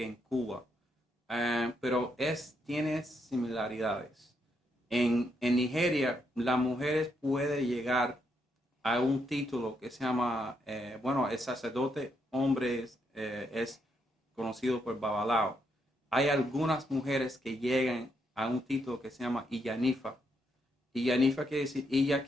en Cuba, pero tiene similaridades. En Nigeria la mujer puede llegar a un título que se llama, bueno, el sacerdote hombre es conocido por Babalao. Hay algunas mujeres que llegan a un título que se llama Iyanifa. Iyanifa quiere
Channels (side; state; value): both; normal; correlation 0.78